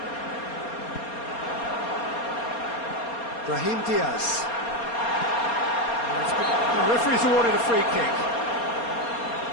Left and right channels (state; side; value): late; right; 4.3 ms